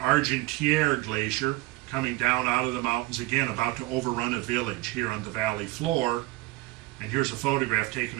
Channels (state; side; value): quieter; left; 20.3 dB